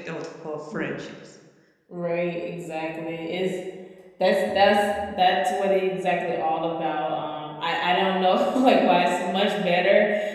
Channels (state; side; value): identical; both; correlation 1.00